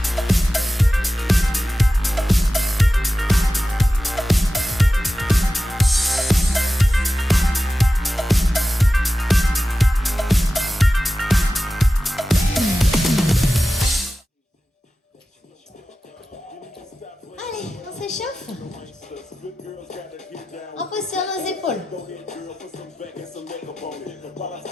Allez, on s'échauffe. On pose sur nos épaules.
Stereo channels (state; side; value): normal; both; correlation 0.94